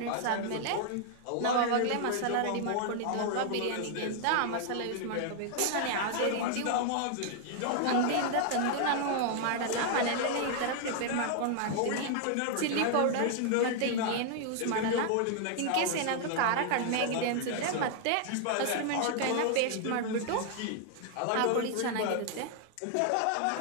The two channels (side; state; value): both; different; correlation 0.00